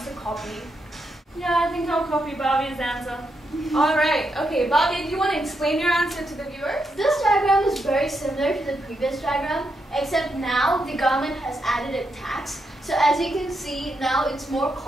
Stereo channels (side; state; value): both; normal; correlation 0.82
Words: to copy. Yeah, I think I'll copy Barbie's answer. Alright, okay, Bhavya, do you want to explain your answer to the viewers? This diagram is very similar to the previous diagram, except now the government has added a tax. So as you can see, now it's more